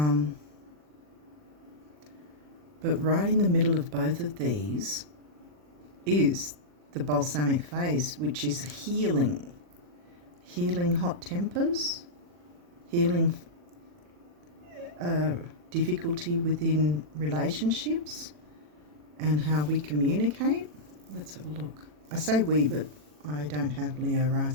right in the middle of both of these is the balsamic phase, which is healing. Healing hot tempers, healing difficulty within relationships and how we communicate. Let's have a look. I say we, but I don't have Leo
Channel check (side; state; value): left; late; 40 ms